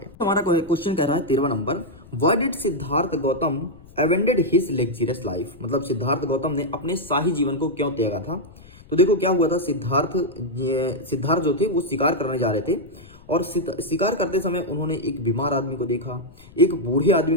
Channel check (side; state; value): left; noise; rumble, 22 dB below the sound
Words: हमारा क्वेश्चन कह रहा है 13 number, why did Siddhartha Gautam abandon his luxurious life. मतलब सिद्धार्थ गौतम ने अपने शाही जीवन को क्यों त्यागा था। तो देखो क्या हुआ था, सिद्धार्थ जो थे वो शिकार करने जा रहे थे और शिकार करते समय उन्होंने एक बीमार आदमी को देखा, एक बूढ़े आदमी